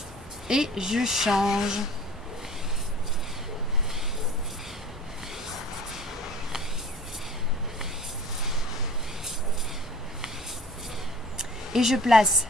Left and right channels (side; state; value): both; normal; correlation 0.45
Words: Et je change. Et je place